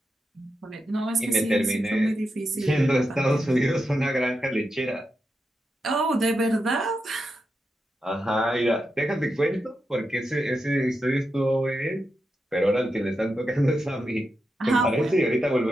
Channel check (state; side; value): normal; both; correlation 0.87